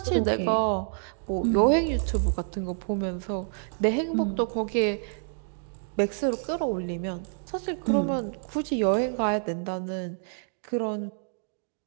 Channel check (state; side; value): silent; left; digital silence